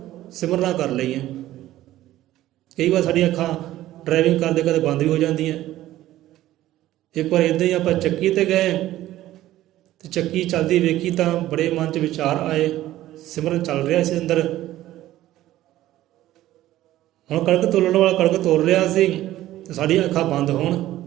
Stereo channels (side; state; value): left; quieter; 14.6 dB